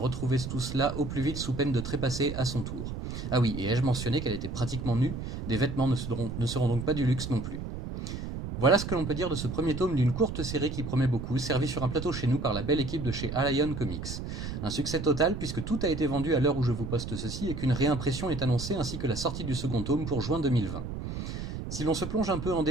tout cela au plus vite sous peine de trépasser à son tour. Ah oui, et ai-je mentionné qu'elle était pratiquement nue? Des vêtements ne seront donc pas du luxe non plus. Voilà ce que l'on peut dire de ce premier tome d'une courte série qui promet beaucoup, servi sur un plateau chez nous par la belle équipe de chez Allion Comics. Un succès total puisque tout a été vendu à l'heure où je vous poste ceci et qu'une réimpression est annoncée ainsi que la sortie du second tome pour juin 2020. Si l'on se plonge un peu en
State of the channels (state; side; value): noise; right; rumble, 6 dB below the sound